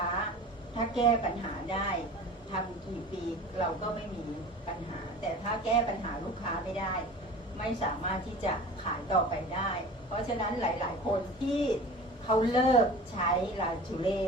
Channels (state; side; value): normal; both; correlation 0.38